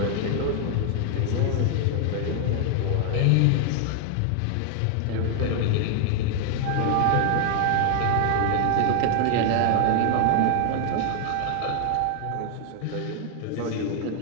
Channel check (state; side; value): different; both; correlation 0.00